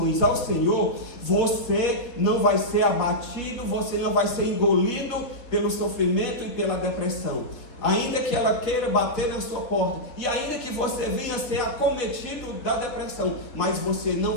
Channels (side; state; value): right; late; 3.4 ms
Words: ao Senhor, você não vai ser abatido, você não vai ser engolido pelo sofrimento e pela depressão. Ainda que ela queira bater na sua porta, e ainda que você venha ser acometido da depressão, mas você não